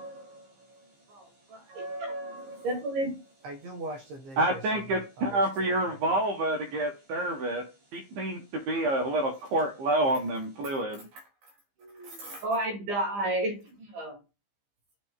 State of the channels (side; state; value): left; late; 15 ms